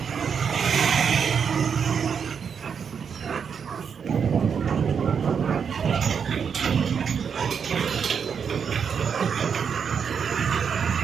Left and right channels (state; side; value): quieter; left; 6.8 dB